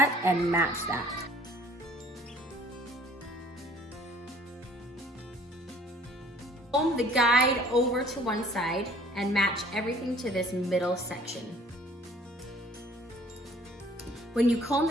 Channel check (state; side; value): normal; both; correlation 0.54